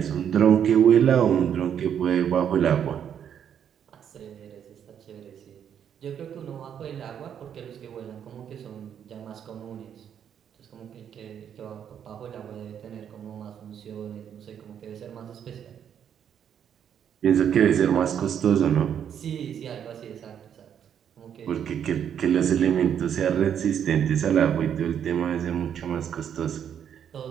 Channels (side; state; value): left; quieter; 8.8 dB